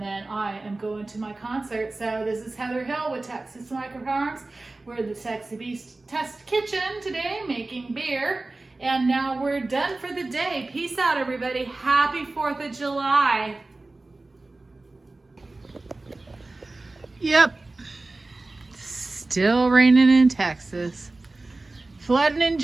then I am going to my concert. So this is Heather Hill with Texas Microfarms. We're in the Sexy Beast Test Kitchen today making beer. And now we're done for the day. Peace out, everybody. Happy 4th of July. Yep. Still raining in Texas. Flooding in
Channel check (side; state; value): left; quieter; 3.1 dB